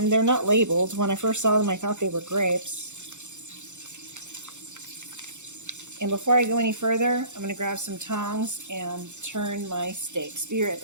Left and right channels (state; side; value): late; left; 0.84 ms